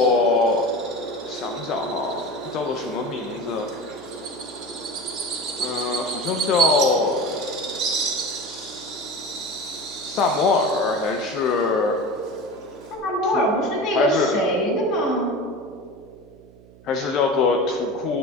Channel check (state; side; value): noise; right; hum, 23 dB below the sound